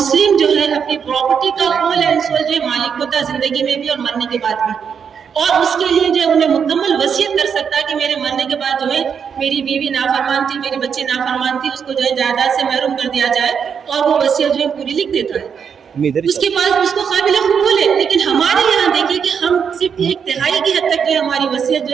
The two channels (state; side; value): quieter; left; 7.0 dB